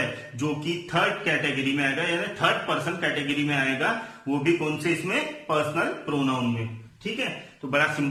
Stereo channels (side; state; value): both; identical; correlation 1.00